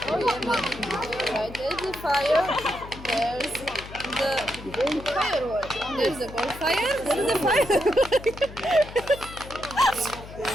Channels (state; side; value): noise; left; hum, 14 dB below the sound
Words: Oh yeah, right. There's the fire. There's the firework. There's the bonfire. There is the fire.